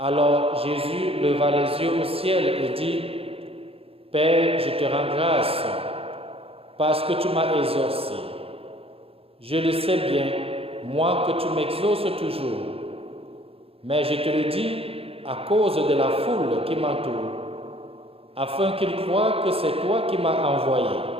Jésus leva les yeux au ciel et dit, « Père, je te rends grâce, parce que tu m'as exaucé. Je le sais bien, moi, que tu m'exauces toujours. Mais je te le dis à cause de la foule qui m'entoure, afin qu'ils croient que c'est toi qui m'as envoyé.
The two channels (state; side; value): late; left; 0.28 ms